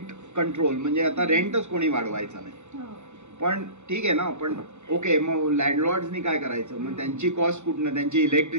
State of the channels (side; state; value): left; late; 0.83 ms